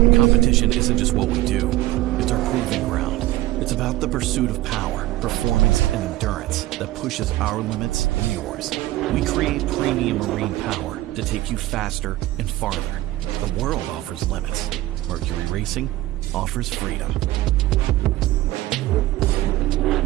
Competition isn't just what we do, it's our proving ground. It's about the pursuit of power, performance, and endurance that pushes our limits and yours. We create premium marine power to take you faster and farther. The world offers limits. Mercury Racing offers freedom.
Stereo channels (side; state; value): left; quieter; 16.6 dB